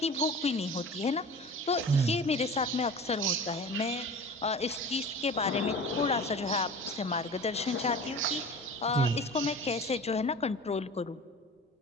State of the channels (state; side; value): normal; both; correlation 0.37